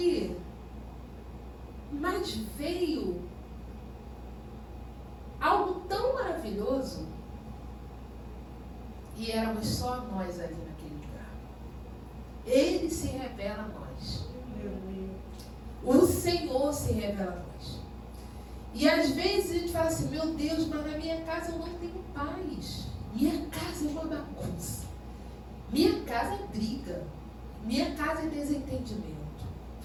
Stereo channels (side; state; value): both; identical; correlation 1.00